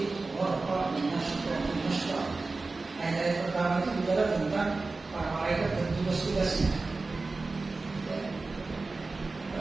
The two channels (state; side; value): quieter; left; 3.7 dB